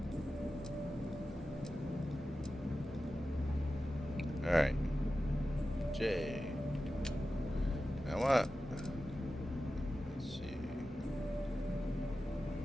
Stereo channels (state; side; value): normal; both; correlation 0.93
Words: Alright. J. Now what? Let's see.